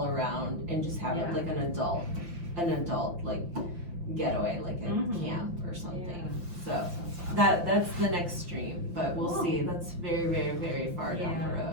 around and just have it like an adult like getaway, like a camp or something. So that's the next stream, but we'll see. That's very, very, very far down the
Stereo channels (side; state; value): left; late; 5.8 ms